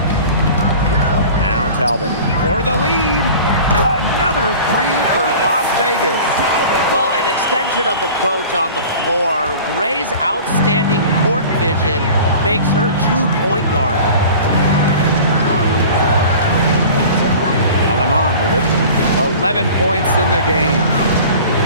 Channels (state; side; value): inverted; both; correlation -0.41